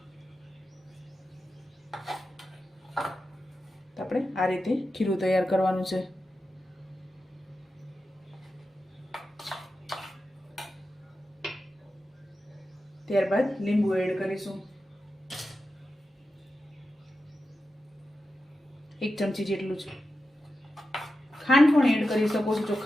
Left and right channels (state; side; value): normal; both; correlation 0.91